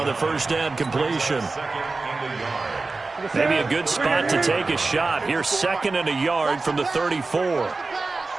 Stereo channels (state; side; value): quieter; left; 3.7 dB